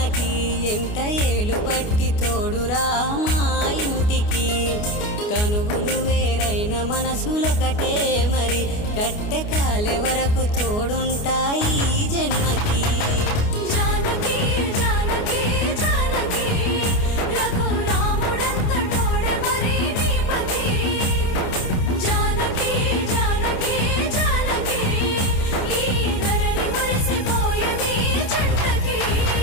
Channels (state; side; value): late; right; 29 ms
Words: ఎంట ఏలు బట్టి తోడురా మా ఇంటికి తనువులు వేరైన మనసులొకటే మరి కట్టె కాలే వరకు తోడుంటాయి జన్మకి